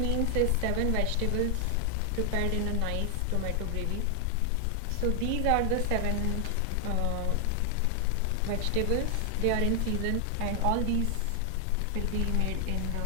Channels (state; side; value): different; both; correlation 0.00